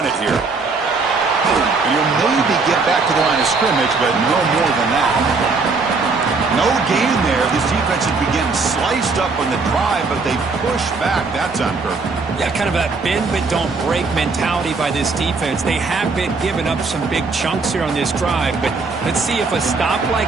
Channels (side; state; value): left; quieter; 4.2 dB